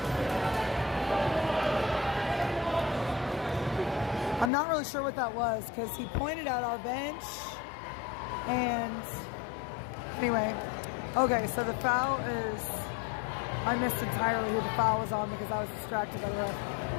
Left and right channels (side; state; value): right; drops out; at 4.5 s